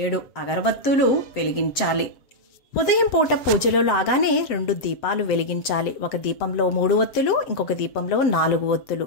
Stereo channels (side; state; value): right; late; 7.8 ms